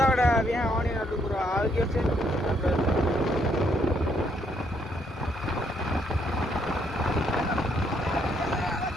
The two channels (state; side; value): normal; both; correlation 0.72